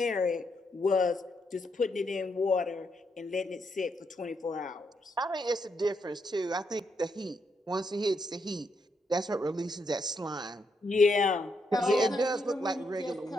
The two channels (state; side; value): normal; both; correlation 0.79